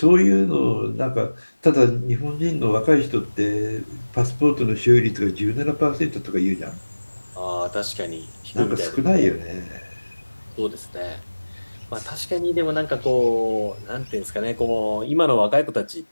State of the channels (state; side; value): inverted; both; correlation -1.00